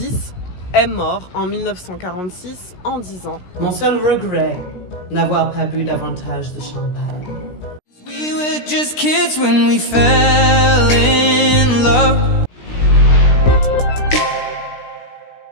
est mort en 1946 en disant « Mon seul regret, n'avoir pas bu davantage de champagne. We were just kids when we fell in love.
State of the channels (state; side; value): late; right; 16 ms